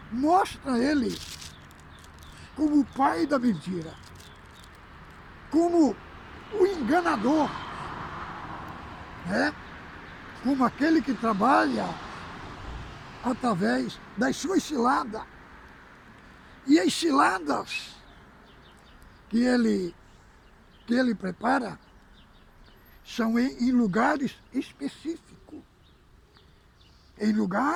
mostra ele como o pai da mentira, como o enganador, né? Como aquele que trabalha através das suas ciladas. E as ciladas que ele prepara são em lugares específicos, em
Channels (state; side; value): identical; both; correlation 1.00